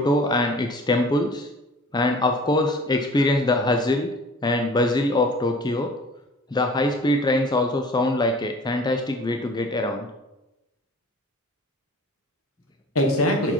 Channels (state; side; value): normal; both; correlation 0.45